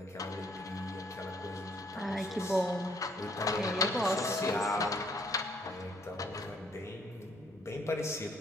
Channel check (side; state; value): both; normal; correlation 0.66